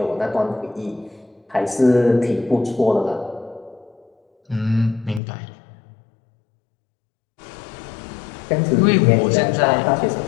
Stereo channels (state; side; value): drops out; right; at 5.2 s